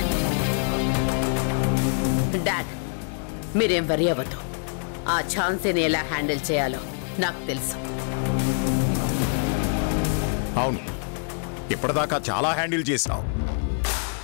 డాడ్, మీరేం వరి అవ్వద్దు. ఆ ఛాన్సీని ఎలా హ్యాండిల్ చేయాలో నాకు తెలుసు. అవును, ఇప్పటిదాకా చాలా హ్యాండిల్ చేశావు.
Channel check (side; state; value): right; silent; 62 dB below the other